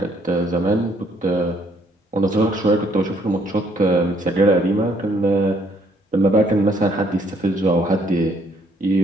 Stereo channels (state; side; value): normal; both; correlation 0.66